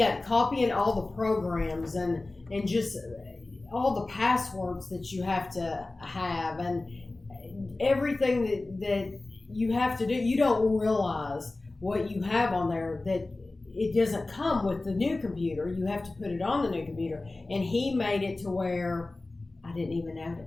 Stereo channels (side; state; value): right; quieter; 3.1 dB